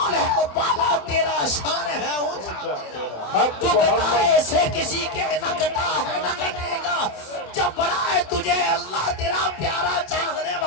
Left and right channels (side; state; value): right; late; 27 ms